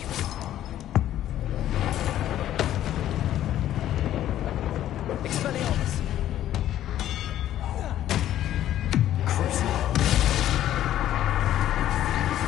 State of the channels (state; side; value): quieter; right; 12.3 dB